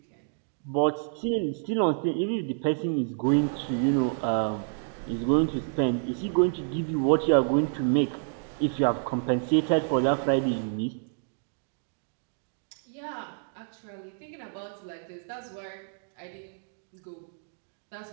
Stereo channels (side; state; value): left; silent; digital silence